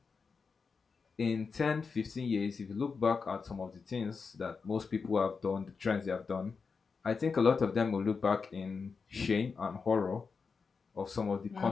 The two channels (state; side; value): quieter; right; 5.1 dB